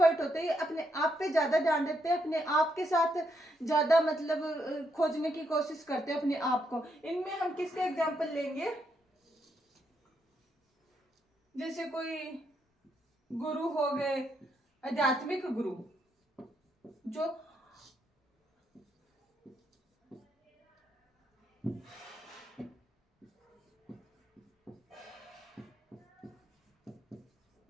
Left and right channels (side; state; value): both; normal; correlation 0.78